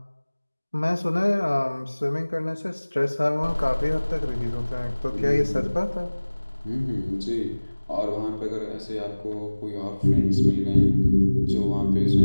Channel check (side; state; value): both; inverted; correlation -1.00